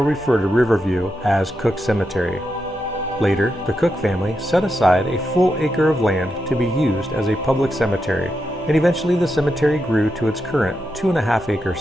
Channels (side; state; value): both; normal; correlation 0.86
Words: refer to Riverview as Cook Cemetery. Later, the Cook family set aside a full acre of land to be used as a public cemetery, and eventually the cemetery grew to its current 2.5-acre